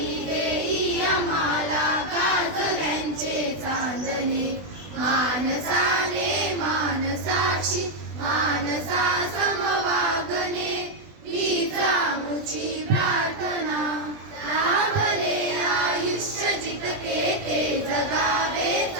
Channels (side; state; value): left; late; 20 ms